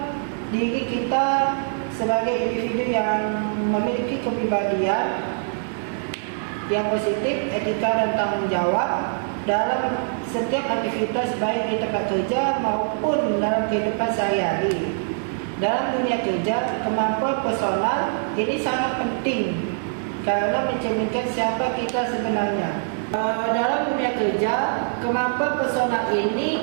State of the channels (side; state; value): left; silent; digital silence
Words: diri kita sebagai individu yang memiliki kepribadian yang positif, etika dan tanggung jawab dalam setiap aktivitas, baik di tempat kerja maupun dalam kehidupan sehari-hari. Dalam dunia kerja, kemampuan personal ini sangat penting karena mencerminkan siapa kita sebenarnya. Dalam dunia kerja, kemampuan personal